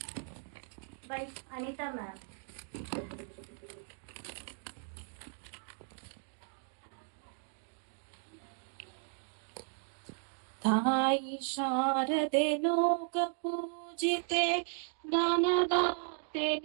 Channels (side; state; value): left; silent; 54 dB below the other